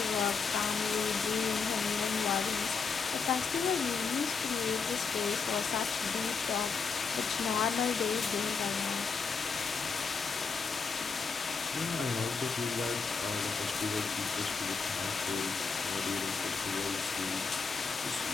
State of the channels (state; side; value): quieter; right; 5.2 dB